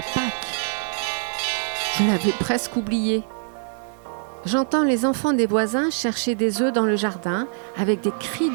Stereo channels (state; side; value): silent; left; 63 dB below the other